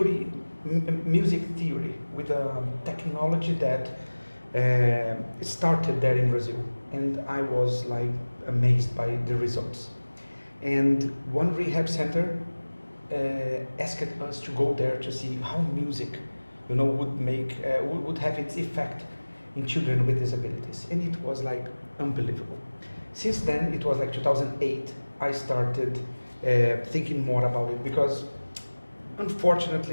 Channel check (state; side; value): inverted; both; correlation -1.00